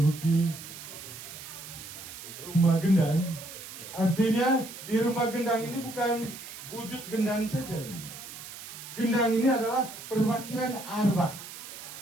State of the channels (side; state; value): right; noise; hiss, 12 dB below the sound